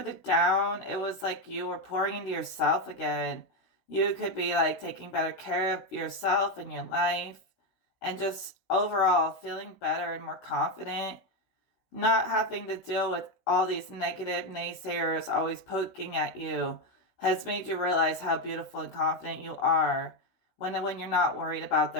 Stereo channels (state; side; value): late; right; 16 ms